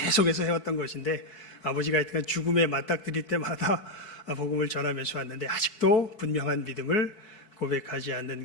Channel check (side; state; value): right; late; 4.7 ms